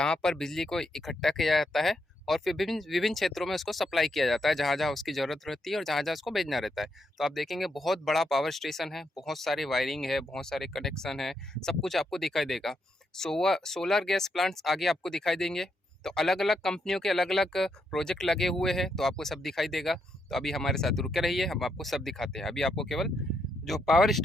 पर बिजली को इकट्ठा किया जाता है और फिर विभिन्न विभिन्न क्षेत्रों में उसको सप्लाई किया जाता है जहां जहां उसकी ज़रूरत रहती है और जहां जहां उसको भेजना रहता है। तो आप देखेंगे बहुत बड़ा पावर स्टेशन है, बहुत सारी वायरिंग है, बहुत सारे कनेक्शन है, सब कुछ आपको दिखाई देगा। सोलर गैस प्लांट्स आगे आपको दिखाई देंगे। तो अलग अलग कंपनियों के अलग अलग प्रोजेक्ट लगे हुए हैं, तो आपको सब दिखाई देगा। तो अभी हमारे साथ रुके रहिए, हम आपको सब दिखाते हैं। अभी आपको केवल जो पावर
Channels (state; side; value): normal; both; correlation 0.79